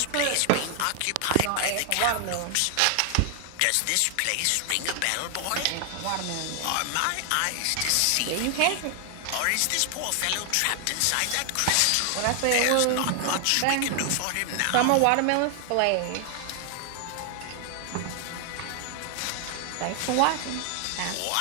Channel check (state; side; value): different; both; correlation 0.00